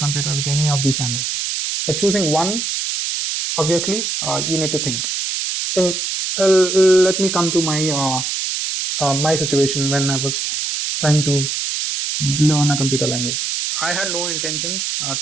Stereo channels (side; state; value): right; noise; hiss, 2 dB below the sound